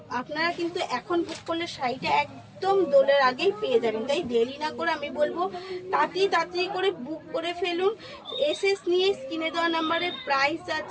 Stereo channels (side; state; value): both; identical; correlation 1.00